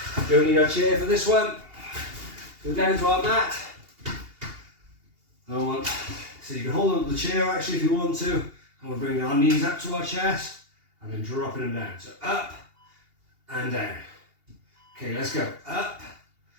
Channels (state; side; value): late; left; 2.8 ms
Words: Don't need our chair for this one. Go down to our mat. So you can hold on to the chair actually if you want to, and we're bringing our knees up to our chest and then dropping them down. So up and down. Okay, let's go. Up